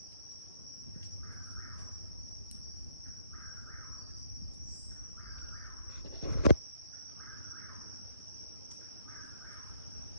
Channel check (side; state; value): both; inverted; correlation -0.69